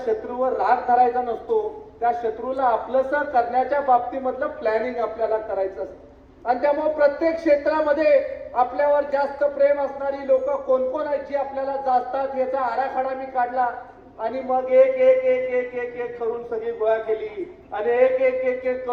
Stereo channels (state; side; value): identical; both; correlation 1.00